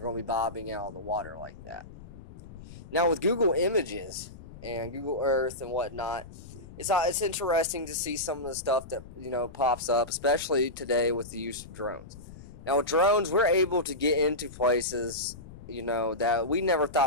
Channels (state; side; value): noise; left; rumble, 16 dB below the sound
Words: going to be bobbing out of the water like that. Now with Google Images and Google Earth and whatnot, it's interesting to see some of the stuff that pops up, especially today with the use of drones. Now with drones, we're able to get into places that we never